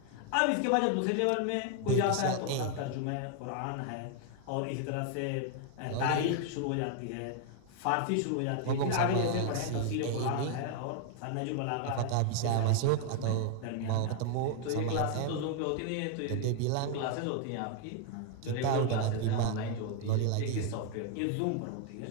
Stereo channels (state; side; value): different; both; correlation 0.00